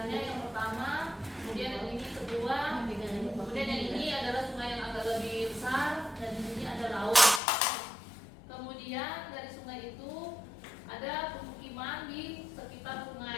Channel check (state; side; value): drops out; right; at 7.4 s